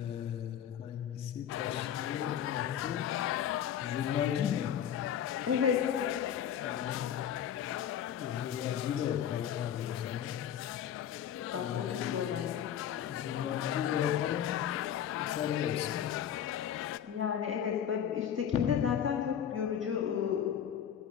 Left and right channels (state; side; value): quieter; right; 9.5 dB